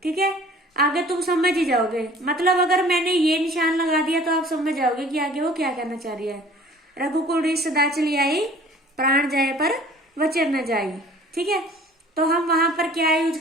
ठीक है, आगे तुम समझ ही जाओगे, मतलब अगर मैंने ये निशान लगा दिया तो आप समझ जाओगे कि आगे वो क्या कहना चाह रही है। रघुकुल रीत सदा चली आई, प्राण जाए पर वचन न जाई। ठीक है, तो हम वहां पर क्या यूज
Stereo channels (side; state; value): both; normal; correlation 0.50